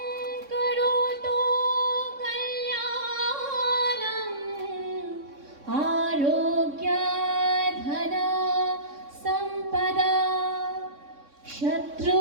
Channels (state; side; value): late; left; 3.6 ms